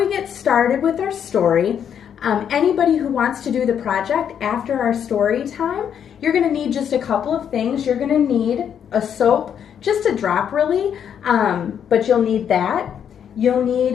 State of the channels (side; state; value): right; quieter; 8.5 dB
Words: get started with our story, anybody who wants to do the project after our story time, you're going to need just a couple of things. You're going to need a soap, just a drop really, but you'll need that. You'll